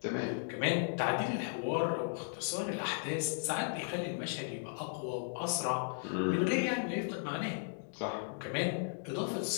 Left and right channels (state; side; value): silent; right; digital silence